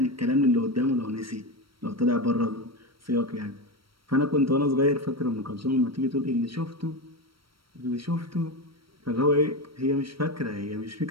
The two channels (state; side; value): late; left; 0.74 ms